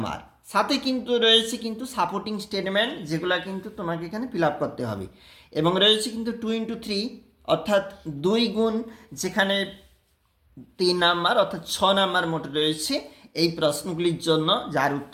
সাথে কিন্তু রয়েছে কিন্তু সাপোর্টিং স্টেটমেন্ট, যেগুলো কিন্তু তোমাকে এখানে ফিল আপ করতে হবে। এবং রয়েছে কিন্তু 2 into 3 অর্থাৎ 2 গুণ, যেখানে 3 নাম্বার অর্থাৎ 6 নাম্বার মোট রয়েছে এই প্রশ্নগুলির জন্য, যার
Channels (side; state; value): both; identical; correlation 1.00